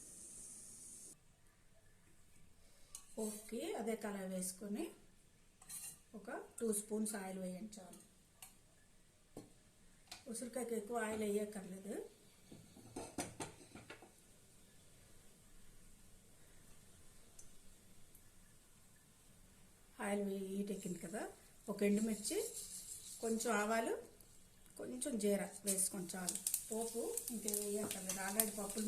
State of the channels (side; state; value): both; identical; correlation 1.00